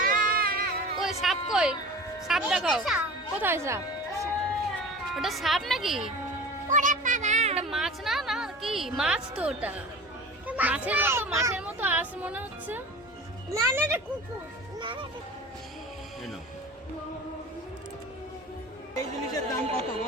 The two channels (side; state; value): both; normal; correlation 0.37